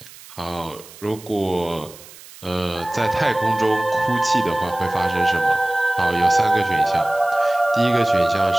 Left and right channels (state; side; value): noise; right; hiss, 19 dB below the sound